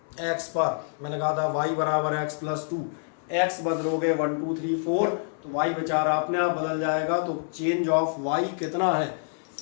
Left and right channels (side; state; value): right; silent; 60 dB below the other